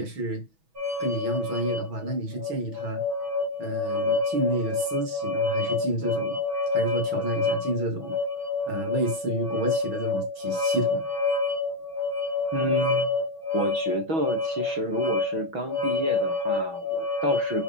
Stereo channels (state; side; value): late; left; 6.1 ms